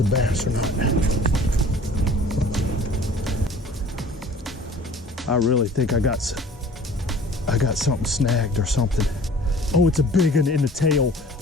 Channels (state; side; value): normal; both; correlation 0.48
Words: bass or not. I really think I got something snagged or something. Oh, it's a big one in the tail.